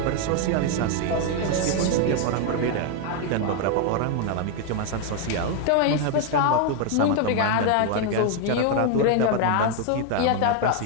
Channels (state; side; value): different; both; correlation 0.01